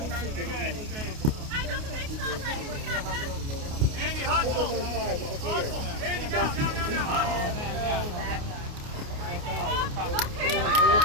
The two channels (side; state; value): left; late; 28 ms